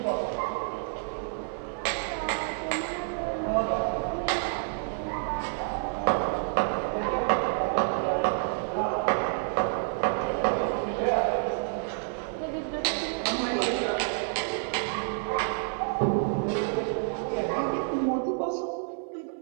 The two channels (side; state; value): left; silent; 59 dB below the other